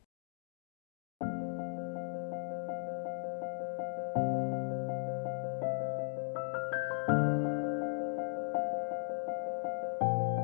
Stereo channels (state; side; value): silent; right; digital silence